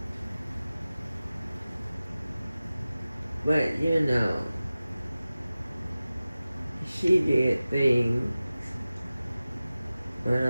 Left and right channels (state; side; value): inverted; both; correlation -0.97